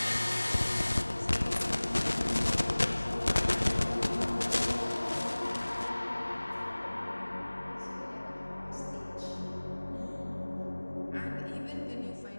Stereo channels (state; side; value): inverted; both; correlation -1.00